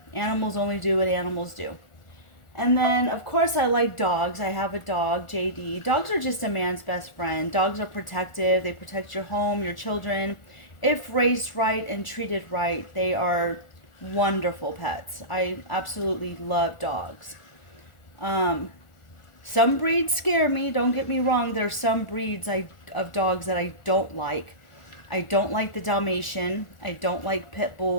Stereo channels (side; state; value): right; late; 1.4 ms